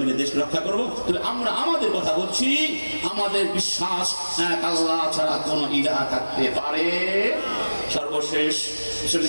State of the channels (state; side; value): inverted; both; correlation -1.00